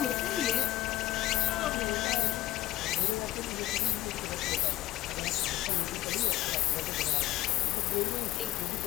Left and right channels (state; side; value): quieter; right; 15.3 dB